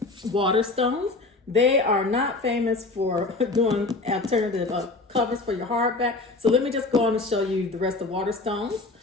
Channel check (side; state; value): right; quieter; 3.4 dB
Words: Waterstones, they are not famous for doing alternative covers for your hardback. So let me just go on and show you the rest of Waterstones.